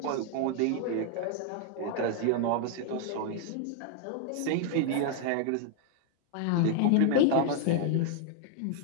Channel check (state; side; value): different; both; correlation 0.00